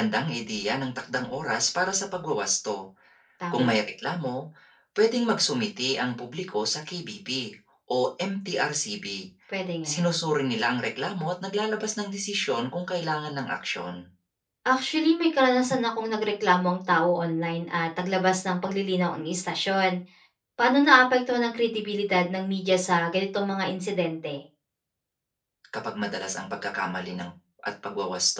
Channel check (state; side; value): identical; both; correlation 1.00